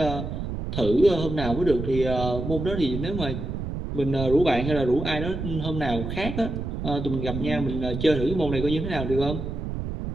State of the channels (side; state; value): right; noise; rumble, 5 dB below the sound